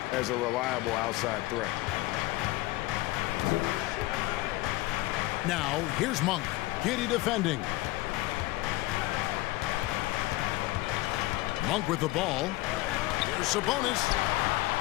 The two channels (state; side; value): quieter; right; 19.5 dB